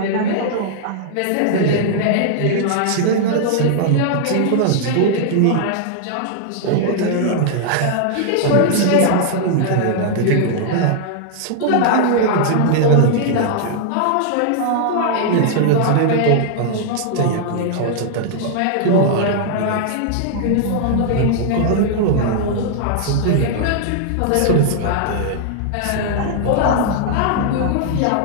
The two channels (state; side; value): different; both; correlation -0.01